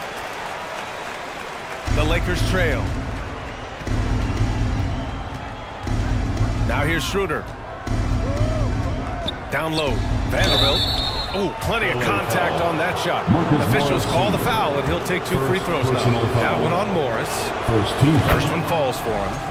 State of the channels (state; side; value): identical; both; correlation 1.00